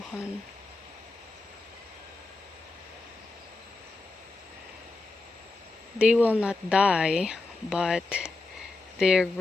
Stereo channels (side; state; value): right; quieter; 3.3 dB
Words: They will not die, but their